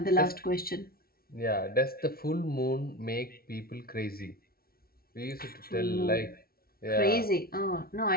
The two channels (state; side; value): late; right; 0.44 ms